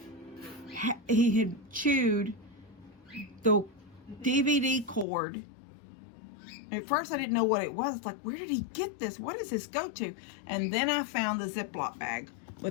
had chewed the DVD cord. At first I didn't know what it was. It's like, where did he get this? What does this go to? And then I found the Ziploc bag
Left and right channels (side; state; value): right; drops out; at 5.1 s